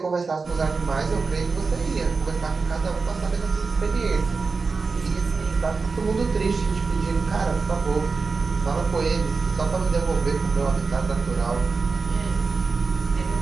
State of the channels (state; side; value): quieter; left; 4.4 dB